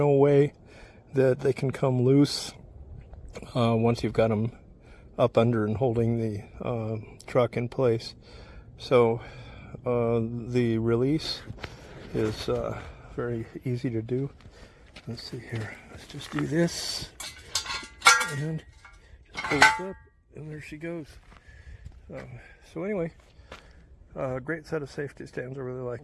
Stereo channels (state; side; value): identical; both; correlation 1.00